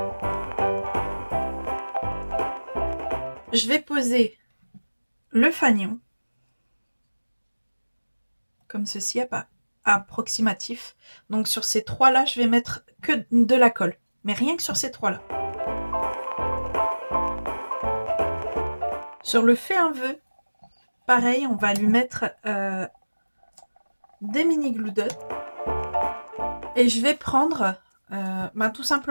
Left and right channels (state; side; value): inverted; both; correlation -1.00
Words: Je vais poser le fanion comme ceci, approximatif. Donc sur ces trois là, je vais mettre que de la colle, mais rien que sur ces trois là. Sur le fais un vœu, pareil, on va lui mettre des mini glue dots et je vais prendre tout